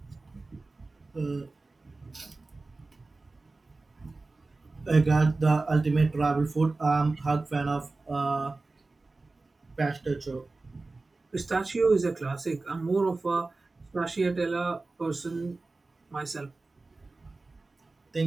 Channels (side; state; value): left; quieter; 3.4 dB